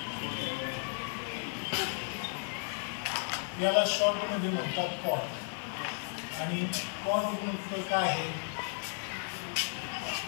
याला शॉर्टमध्ये म्हणतात पॉट आणि पॉट काय आहे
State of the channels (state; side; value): silent; right; 55 dB below the other